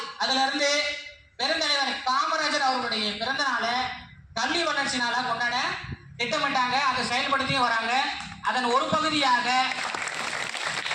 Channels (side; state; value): both; identical; correlation 1.00